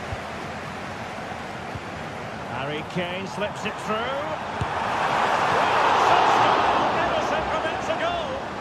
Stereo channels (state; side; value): identical; both; correlation 1.00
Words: Harry Kane slips it through. Ederson prevents a goal.